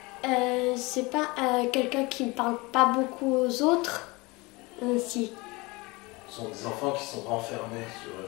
C'est pas quelqu'un qui ne parle pas beaucoup aux autres. Si. Ce sont des enfants qui sont renfermés sur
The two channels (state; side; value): quieter; right; 24.4 dB